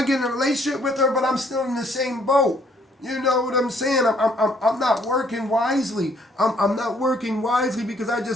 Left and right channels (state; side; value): normal; both; correlation 0.65